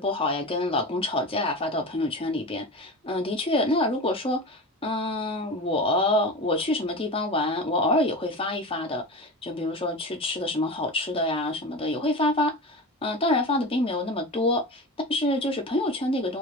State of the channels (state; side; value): normal; both; correlation 0.28